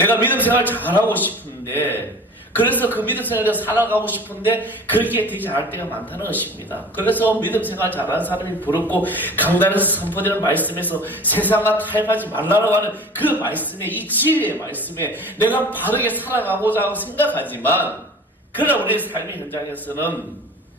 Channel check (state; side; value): normal; both; correlation 0.41